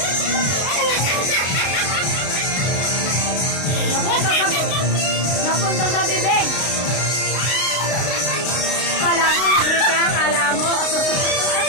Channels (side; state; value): right; late; 32 ms